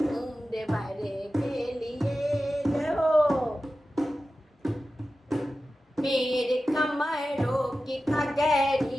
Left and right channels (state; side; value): normal; both; correlation 0.94